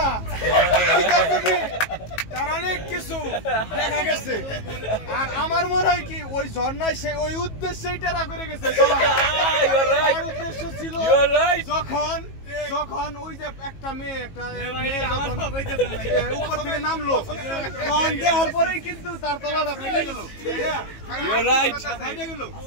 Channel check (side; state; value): right; late; 18 ms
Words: তার অনেক কিছু দেখা গেছে। আর আমার মনে হয় কি ওই ঝর্ণায় সে ওই উদ্দেশ্যেই টেরা করে গেছে। তার উদ্দেশ্য ছিল যখন ওই যে একটা মেয়ে উপর থেকে নামলো, তখন দেওয়ার পরেই কিন্তু তার তলাটা ফেটে গেল।